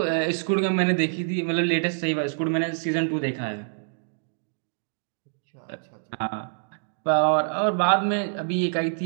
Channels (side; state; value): left; silent; digital silence